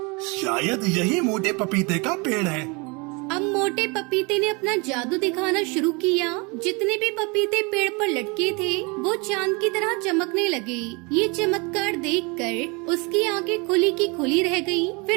शायद यही मोटे पपीते का पेड़ है। अब मोटे पपीते ने अपना जादू दिखाना शुरू किया। जितने भी पपीते पेड़ पर लटके थे वो चांद की तरह चमकने लगे। ये चमत्कार देखकर उसकी आंखें खुली की खुली रह गईं।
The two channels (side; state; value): left; quieter; 29.1 dB